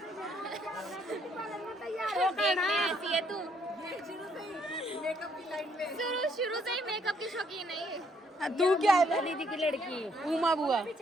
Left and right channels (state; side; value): normal; both; correlation 0.69